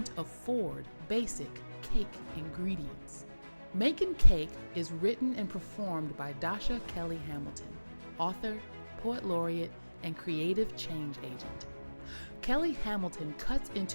afford basic cake ingredients. Makin Cake is written and performed by Dasha Kelly Hamilton, author, poet laureate, and creative change agent. Kelly Hamilton cuts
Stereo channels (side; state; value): both; inverted; correlation -1.00